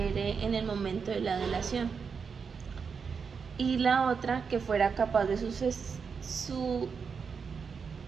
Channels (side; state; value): left; quieter; 5.9 dB